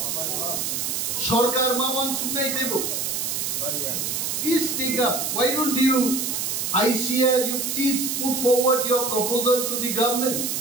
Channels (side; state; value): right; noise; hiss, 1 dB below the sound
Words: sarkar maman sunai debo please speak up. Why don't you ICR you please put forward your proposal to the government.